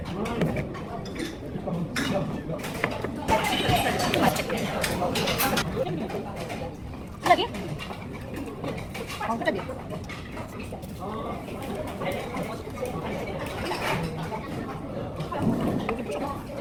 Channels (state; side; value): identical; both; correlation 1.00